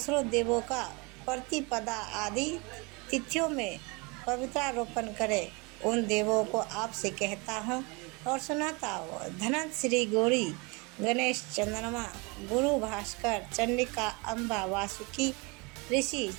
देवों का प्रतिपदा आदि तिथियों में पवित्रारोपण करे, उन देवों को आपसे कहता हूँ और सुनाता हूँ। धनंत, श्री गौरी, गणेश, चंद्रमा, गुरु भास्कर, चंडिका, अम्बा, वासुकी, ऋषि,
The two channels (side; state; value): left; quieter; 28.5 dB